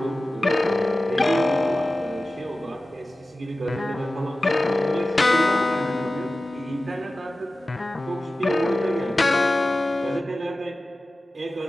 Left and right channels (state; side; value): normal; both; correlation 0.95